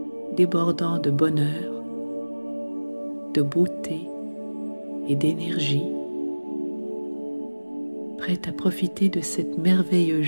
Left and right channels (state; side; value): inverted; both; correlation -1.00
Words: débordant de bonheur, de beauté et d'énergie, prête à profiter de cette merveilleuse